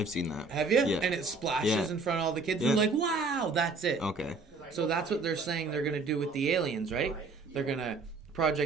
seen that. Have you? Yeah. And it splashes Yeah. in front of all the kids, Yeah. and like, wow, that's it. Okay. So that's what they're saying they're gonna do with the aliens, right? They're gonna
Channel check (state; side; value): quieter; left; 3.8 dB